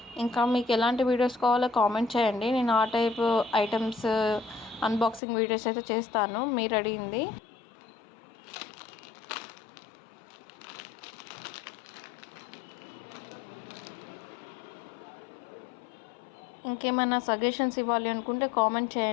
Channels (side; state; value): right; drops out; at 5.2 s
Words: ఇంకా మీకు ఎలాంటి వీడియోస్ కావాలో కామెంట్ చేయండి, నేను ఆ టైప్ ఐటమ్స్ అన్బాక్సింగ్ వీడియోస్ అయితే చేస్తాను మీరు అడిగింది. ఇంకేమైనా సజెషన్స్ ఇవ్వాలి అనుకుంటే కామెంట్